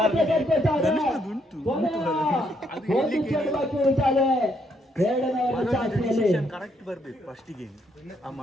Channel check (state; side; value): normal; both; correlation 0.73